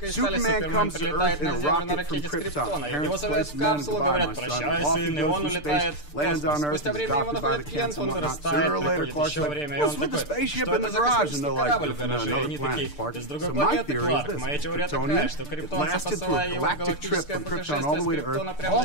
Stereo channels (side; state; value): right; late; 6.7 ms